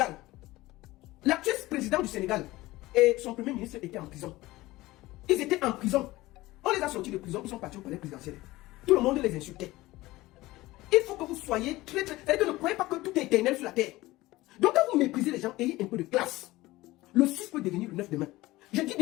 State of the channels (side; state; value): right; quieter; 18.7 dB